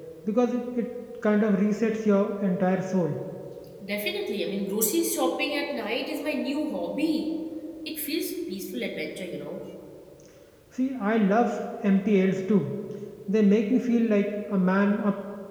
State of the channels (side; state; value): both; identical; correlation 1.00